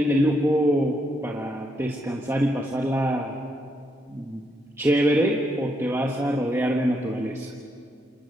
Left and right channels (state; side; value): normal; both; correlation 0.78